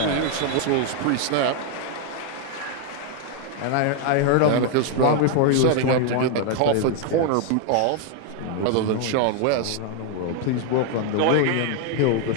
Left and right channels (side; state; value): both; different; correlation 0.00